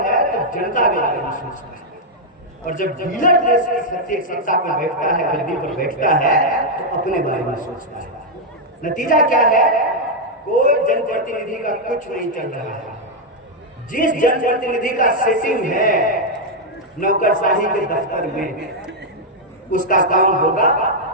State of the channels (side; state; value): both; normal; correlation -0.02